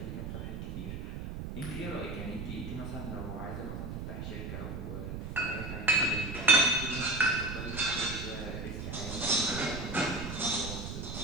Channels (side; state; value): right; noise; rumble, 6 dB below the sound